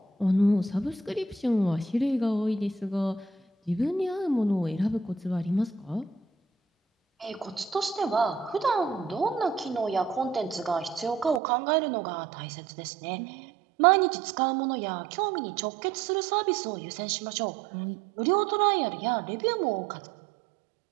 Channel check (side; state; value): left; drops out; at 11.4 s